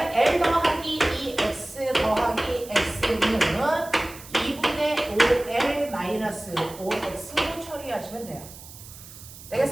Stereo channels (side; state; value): right; noise; hiss, 17 dB below the sound